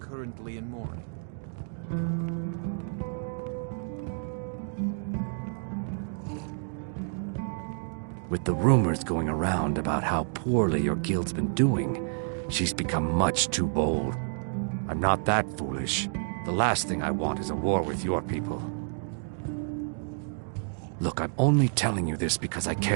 in mourning. With the rumors going around about how poorly your guild's been doing, she's become much too bold. I'm not that foolish. The last thing I want is a war with your people. Look, I'm only telling you this because I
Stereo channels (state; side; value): silent; left; digital silence